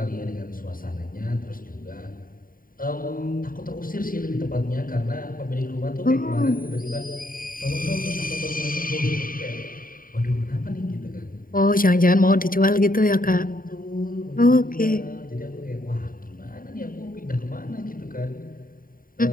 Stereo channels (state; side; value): late; right; 0.41 ms